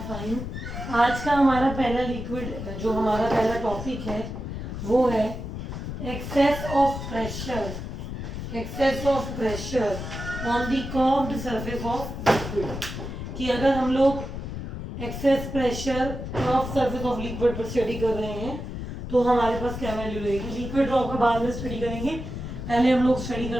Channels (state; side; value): noise; left; rumble, 7 dB below the sound